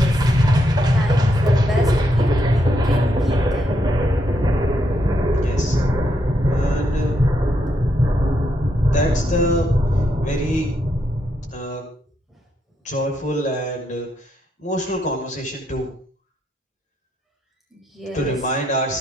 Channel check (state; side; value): normal; both; correlation 0.79